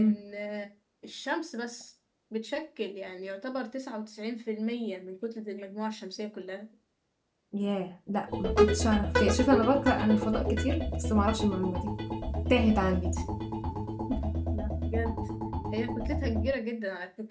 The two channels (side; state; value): both; identical; correlation 1.00